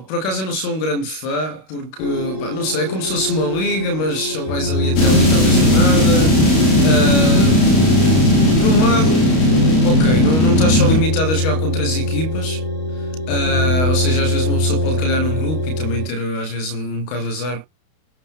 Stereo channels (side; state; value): right; late; 32 ms